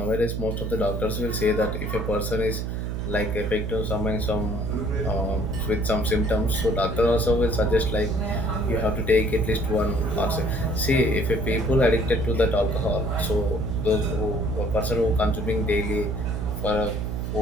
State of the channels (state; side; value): noise; right; hum, 3 dB below the sound